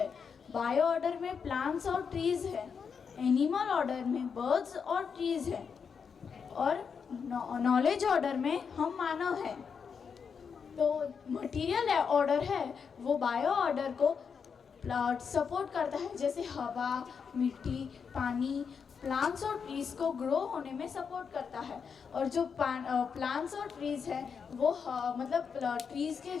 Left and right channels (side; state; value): right; quieter; 6.2 dB